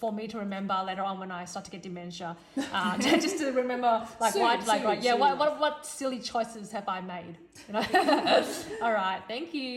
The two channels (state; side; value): identical; both; correlation 1.00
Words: me to remember later on when I start to get dementia, just to remember like what silly choices have I made? You know. All right, thank